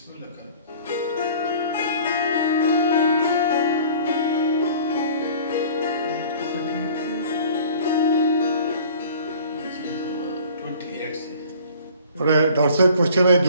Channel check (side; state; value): both; inverted; correlation -0.48